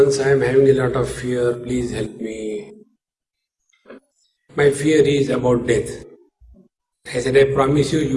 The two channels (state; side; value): identical; both; correlation 1.00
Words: I am having a lot of fear, please help me. My fear is about death. I said, I promise you, you